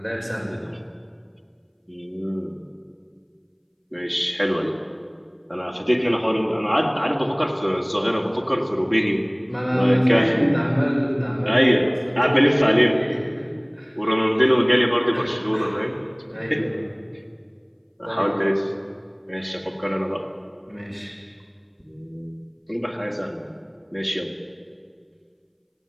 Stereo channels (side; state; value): both; identical; correlation 1.00